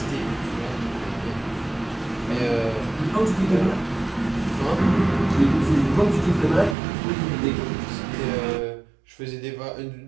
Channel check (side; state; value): left; drops out; at 6.8 s